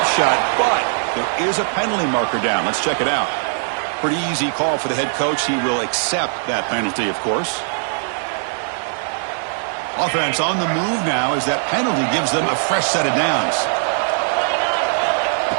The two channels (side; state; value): left; silent; 66 dB below the other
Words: shot, but there is a penalty marker down. Let's check it out. Pretty easy call for the head coach. He will accept that penalty, of course. Offense on the move now as that penalty gives them a fresh set of downs.